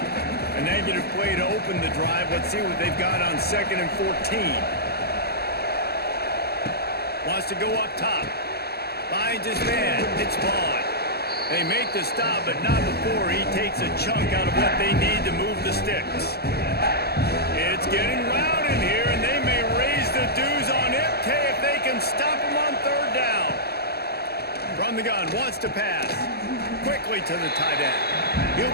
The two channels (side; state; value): right; late; 0.46 ms